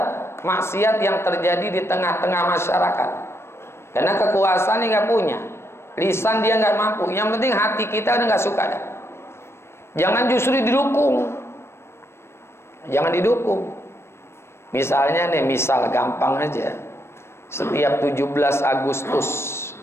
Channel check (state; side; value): late; right; 0.12 ms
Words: maksiat yang terjadi di tengah-tengah masyarakat. Karena kekuasaan dia nggak punya, lisan dia nggak mampu. Yang penting hati kita udah nggak suka dah. Jangan justru didukung, jangan didukung. Misalnya nih, misal gampang aja, setiap 17 Agustus,